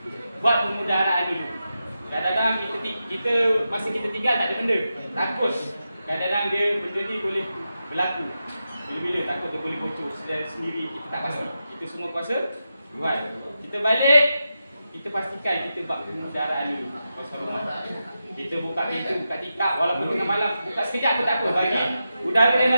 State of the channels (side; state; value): both; inverted; correlation -0.89